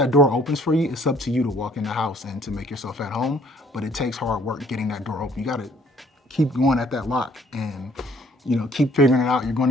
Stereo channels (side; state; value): both; normal; correlation 0.61